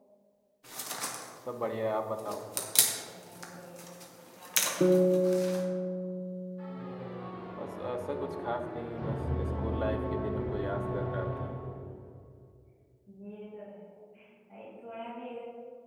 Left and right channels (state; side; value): identical; both; correlation 1.00